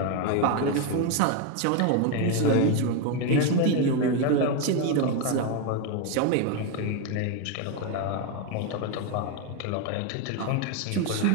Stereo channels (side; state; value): both; different; correlation 0.02